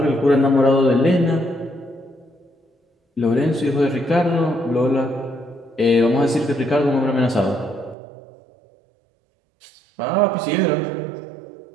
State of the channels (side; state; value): left; drops out; at 8.0 s